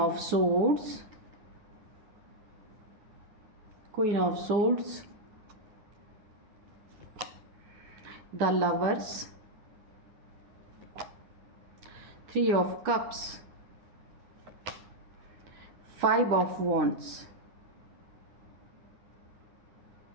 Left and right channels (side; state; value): left; late; 10 ms